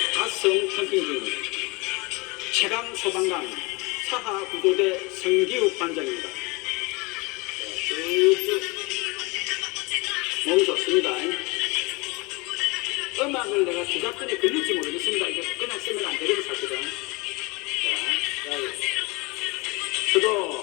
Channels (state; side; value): quieter; right; 26.3 dB